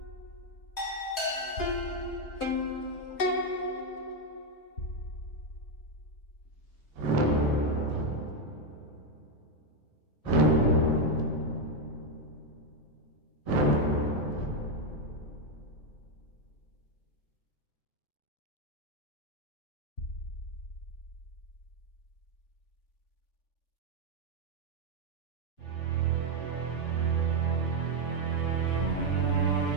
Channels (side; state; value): right; late; 3.5 ms